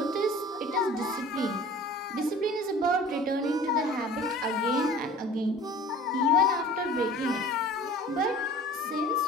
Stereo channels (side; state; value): both; normal; correlation 0.44